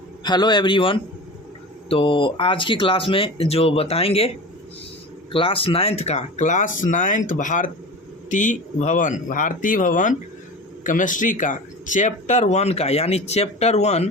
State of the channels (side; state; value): both; normal; correlation 0.33